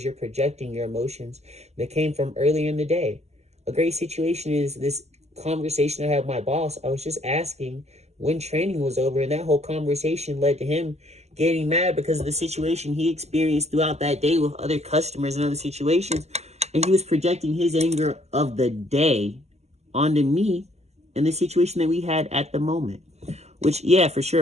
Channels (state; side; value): late; left; 0.32 ms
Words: you're projecting your emotions that came from earlier in the day. A great situation is this conversation I had with my boss. I was just asking when training was over, and that whole conversation led to him getting mad because of the situation he experienced throughout that day with other customers and other situations. And he was projecting his anger of the day onto me and the situation that we had at the moment. Which, yeah, for sure,